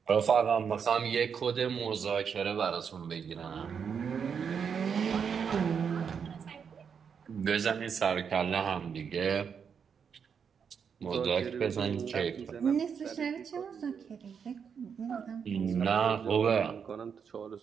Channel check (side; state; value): left; quieter; 6.8 dB